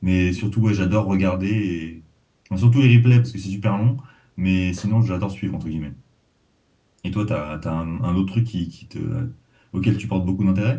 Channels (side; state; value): both; identical; correlation 1.00